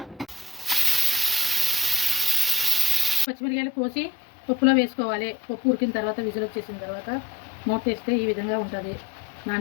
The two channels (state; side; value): drops out; right; at 3.2 s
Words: పచ్చిమిరకాయలు కోసి పప్పులో వేసుకోవాలి. పప్పు ఉడికిన తర్వాత విజిల్ వచ్చేసిన తర్వాత మూత వేస్తే ఈ విధంగా ఉంటుంది.